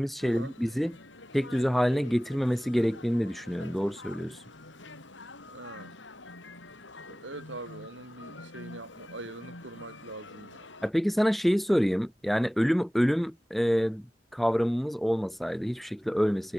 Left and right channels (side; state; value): both; normal; correlation 0.98